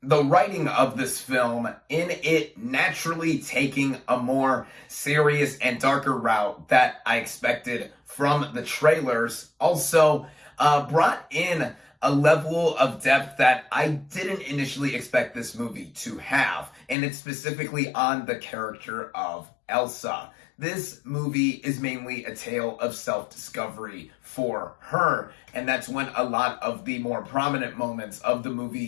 The writing of this film, in it naturally taking a more serious and darker route that I expected from the trailers, also brought in a level of depth that I didn't initially expect this movie to have, and it's specifically on the character of Elsa. This movie is mainly a tale of self-discovery for her, and that's when a lot of the more prominent moments of the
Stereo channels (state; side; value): drops out; right; at 16.9 s